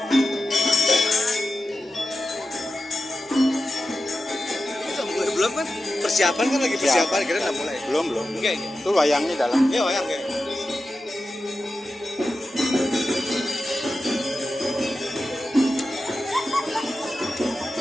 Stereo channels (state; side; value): normal; both; correlation 0.92